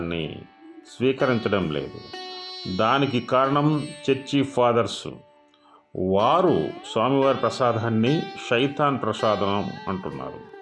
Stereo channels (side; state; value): both; identical; correlation 1.00